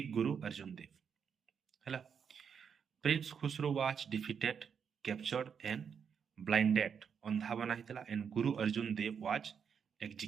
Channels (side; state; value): left; quieter; 7.0 dB